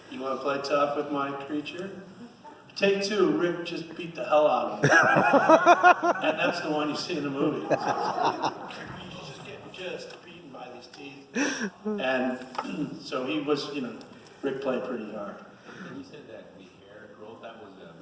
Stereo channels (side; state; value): both; identical; correlation 1.00